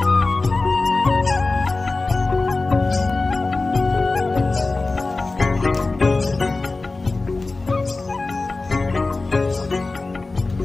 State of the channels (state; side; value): quieter; right; 3.5 dB